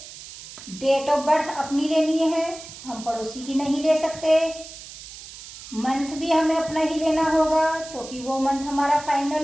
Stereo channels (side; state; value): right; noise; hiss, 15 dB below the sound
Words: डेट ऑफ बर्थ अपनी लेनी है, हम पड़ोसी की नहीं ले सकते। मंथ भी हमें अपना ही लेना होगा क्योंकि वो मंथ हमारा